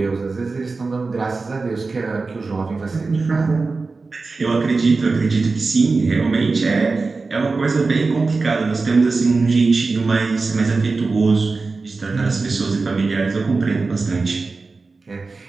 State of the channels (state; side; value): quieter; left; 4.0 dB